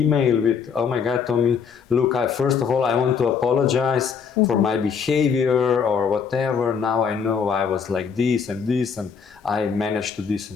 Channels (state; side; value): quieter; right; 6.4 dB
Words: with, oh my God, Tommy, look, first of all, I want to apologize for my behavior or whatever. Now I know I was like this, and I managed to this